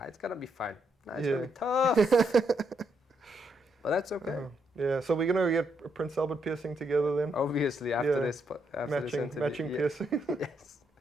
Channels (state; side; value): normal; both; correlation 0.77